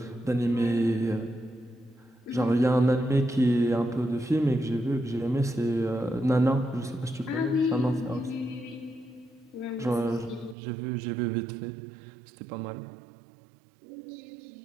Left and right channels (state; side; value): drops out; left; at 10.6 s